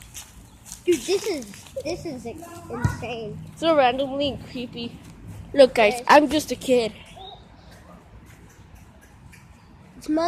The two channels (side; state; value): both; identical; correlation 1.00